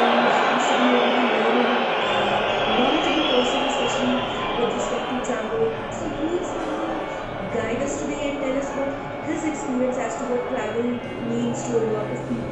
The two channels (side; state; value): both; identical; correlation 1.00